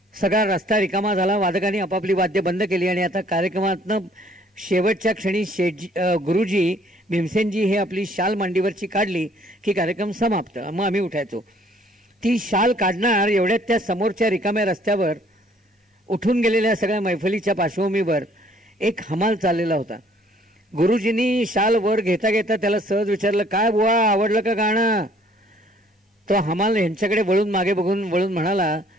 सगळा रस्ता रिकामा झाला, वादकांनी आपापली वाद्य बंद केली आणि आता कार्यक्रमातनं शेवटच्या क्षणी गुरुजी भीमसेनजी हे आपली शाल मांडीवरची काढली की कार्यक्रम समाप्त. मग आम्ही उठायचो. ती शाल काढणार एवढ्यात त्या समोरच्या रिकाम्या रस्त्यावर उठून गेलेल्या सगळ्या मैफलीच्या पार्श्वभूमीवर एक हमाल चाललेला होता. गुरुजींनी शाल वर घेता घेता त्याला सहज विचारलं, काय बुवा आवडलं का गाणं? तो हमाल यांच्याकडे मागे बघून वळून म्हणाला,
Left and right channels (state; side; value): normal; both; correlation 0.60